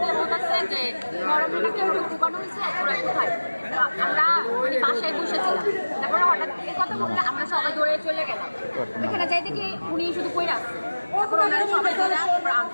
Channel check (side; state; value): both; inverted; correlation -1.00